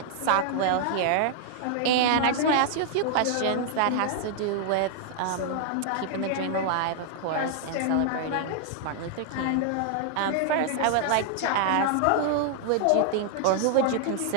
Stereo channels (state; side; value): different; both; correlation -0.01